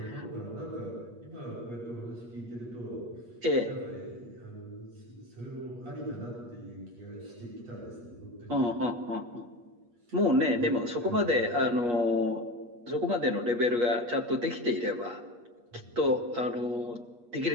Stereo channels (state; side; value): late; left; 8.4 ms